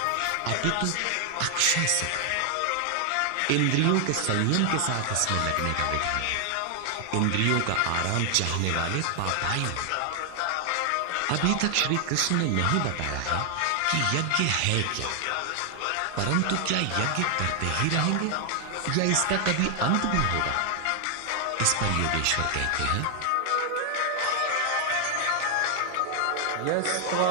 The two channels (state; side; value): different; both; correlation 0.00